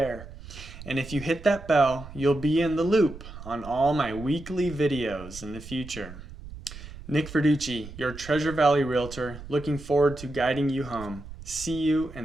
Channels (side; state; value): right; noise; rumble, 14 dB below the sound